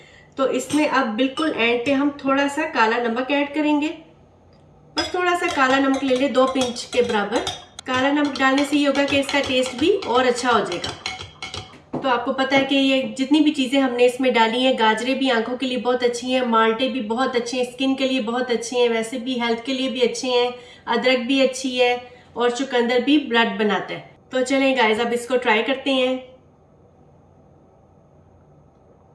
तो इसमें अब बिल्कुल एंड पे हम थोड़ा सा काला नमक ऐड करेंगे। बस थोड़ा सा काला नमक ले ले, 2 पिंच के बराबर। काला नमक डालने से ये होगा कि इसका टेस्ट भी और अच्छा हो जाएगा। तो आपको पता है कि ये जितनी भी चीज़ें हमने इसमें डाली हैं, गाजरें भी आंखों के लिए बहुत अच्छी हैं, माल्टे भी बहुत अच्छे हैं, स्किन के लिए बहुत अच्छे हैं, वैसे भी हेल्थ के लिए भी अच्छे हैं, अदरक भी अच्छी है और चुकंदर भी ब्लड बनाता है। तो चलें गाइस, अब इसको ट्राई करते हैं।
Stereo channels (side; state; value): both; identical; correlation 1.00